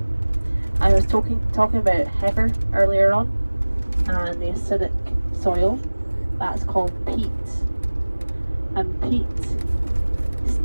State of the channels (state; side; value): inverted; both; correlation -1.00